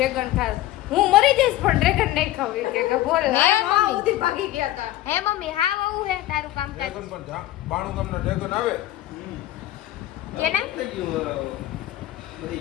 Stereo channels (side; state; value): right; quieter; 14.9 dB